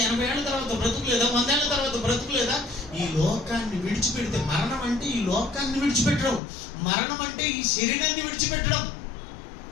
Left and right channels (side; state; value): right; drops out; at 6.4 s